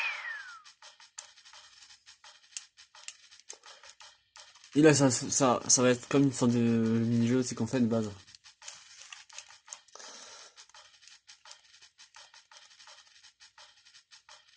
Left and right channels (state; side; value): identical; both; correlation 1.00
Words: Et là, ça va être comme une sorte de mini-jeu aussi qu'on fait de base.